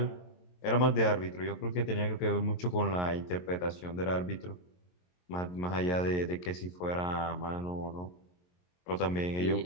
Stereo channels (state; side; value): late; right; 22 ms